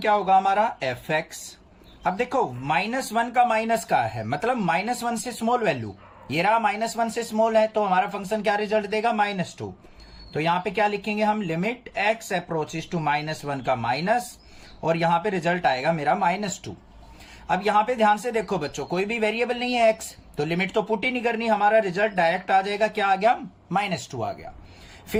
होगा हमारा, एफ एक्स। अब देखो -1 का माइनस का है, मतलब -1 से स्मॉल वैल्यू, ये रहा -1 से स्मॉल है, तो हमारा फंक्शन क्या रिजल्ट देगा, -2। तो यहां पे क्या लिखेंगे हम, लिमिट x अप्रोचेस टू -1 का माइनस, और यहां पे रिजल्ट आएगा मेरा -2। अब यहां पे ध्यान से देखो बच्चों, कोई भी वेरिएबल नहीं है x, तो लिमिट तो पुट ही नहीं करनी, हमारा रिजल्ट डायरेक्ट आ जाएगा, क्या आ गया, -2 आ गया।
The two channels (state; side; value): identical; both; correlation 1.00